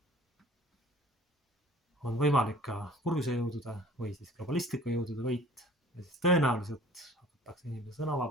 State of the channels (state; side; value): normal; both; correlation 0.49